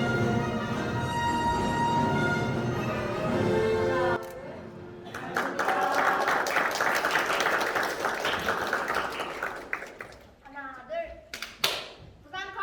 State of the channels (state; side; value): identical; both; correlation 1.00